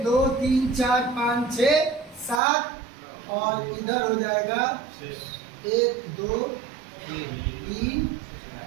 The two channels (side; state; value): left; drops out; at 2.4 s